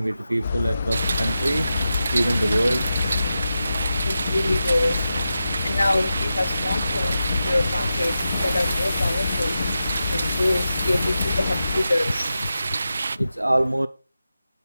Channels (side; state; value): both; inverted; correlation -0.91